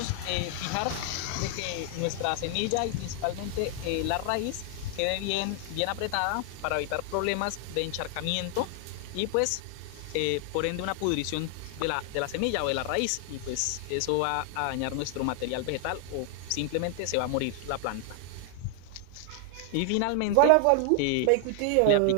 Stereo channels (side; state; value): both; different; correlation 0.00